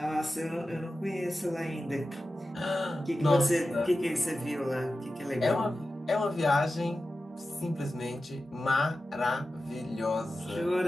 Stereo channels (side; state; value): both; normal; correlation 0.93